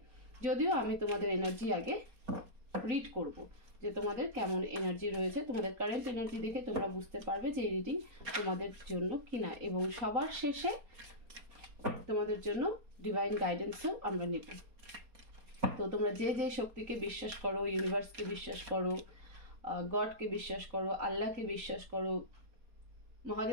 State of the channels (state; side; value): late; left; 4.3 ms